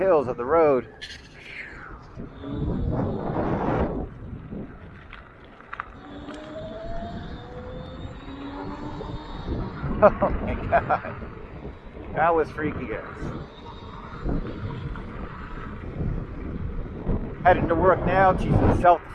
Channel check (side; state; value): both; identical; correlation 1.00